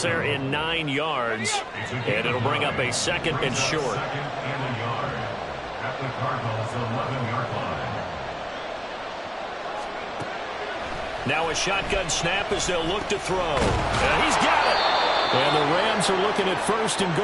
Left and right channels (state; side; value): identical; both; correlation 1.00